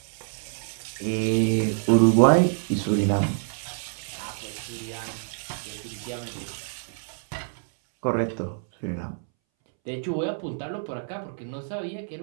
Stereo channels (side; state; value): left; silent; 60 dB below the other